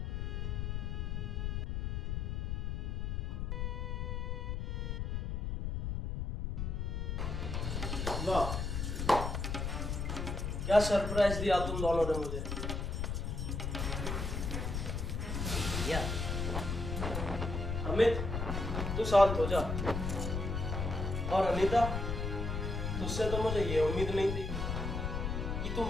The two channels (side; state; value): left; noise; rumble, 2 dB below the sound